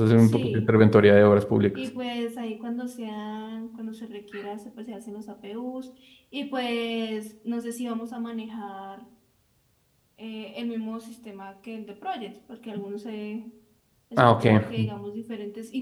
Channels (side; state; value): both; identical; correlation 1.00